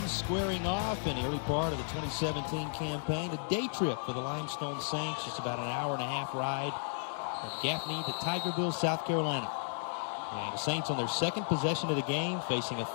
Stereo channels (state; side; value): silent; right; 55 dB below the other